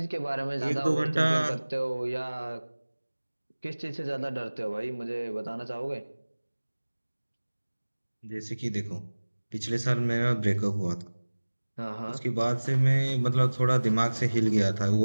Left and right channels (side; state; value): both; inverted; correlation -1.00